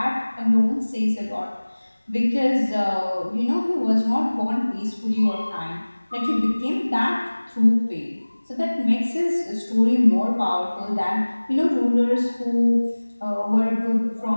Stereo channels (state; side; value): inverted; both; correlation -1.00